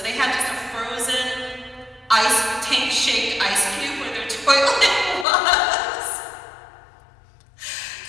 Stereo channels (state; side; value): drops out; right; at 5.2 s